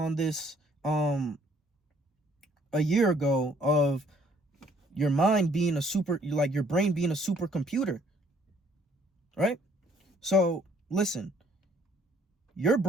this a year ago of your mind being your brain being a supercomputer, right? So listen, your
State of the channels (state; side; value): normal; both; correlation 0.62